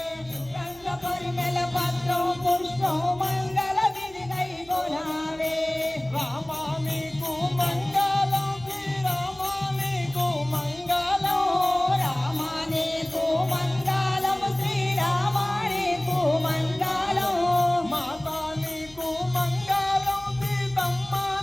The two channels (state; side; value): noise; right; hum, 25 dB below the sound